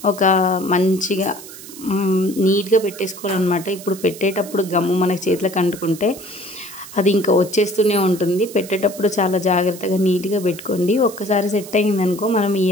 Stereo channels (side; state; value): right; noise; hiss, 15 dB below the sound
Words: ఒక మంచిగా నీట్గా పెట్టేసుకోవాలన్నమాట. ఇప్పుడు పెట్టేటప్పుడు గమ్ము మనకి చేతులకు అంటుకుంటే అది ఇంకా వచ్చేస్తూనే ఉంటుంది. పెట్టేటప్పుడు చాలా జాగ్రత్తగా నీట్గా పెట్టుకోండి. ఒక్కసారి సెట్ అయిందనుకో మనం